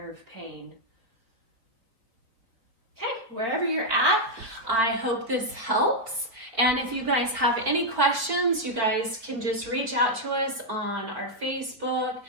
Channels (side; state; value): left; late; 4.6 ms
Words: pain. Okay, wherever you're at, I hope this helps. And if you guys have any questions, you guys can just reach out to us on our Facebook,